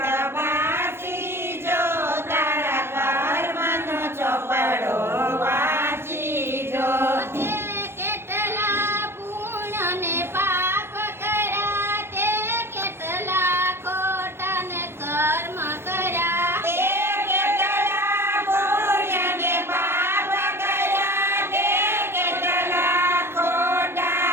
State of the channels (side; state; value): left; late; 0.12 ms